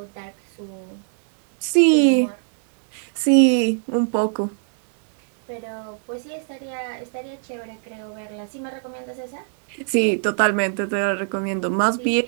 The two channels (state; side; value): silent; left; digital silence